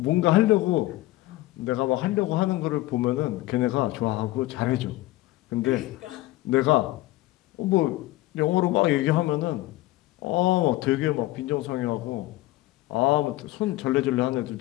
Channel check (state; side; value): quieter; right; 17.7 dB